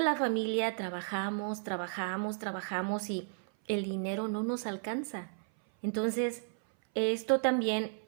familia trabajamos, trabajamos, trabajamos y el dinero no nos alcanza. Entonces, esto también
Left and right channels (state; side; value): silent; left; 55 dB below the other